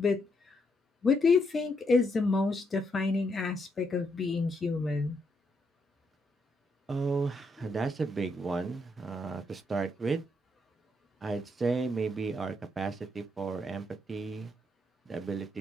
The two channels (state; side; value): normal; both; correlation 0.77